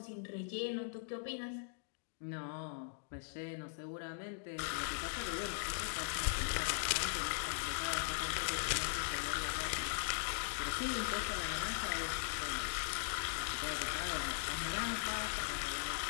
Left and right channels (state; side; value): silent; right; digital silence